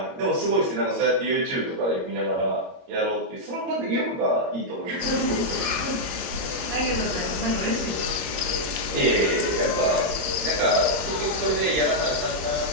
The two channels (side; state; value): left; late; 21 ms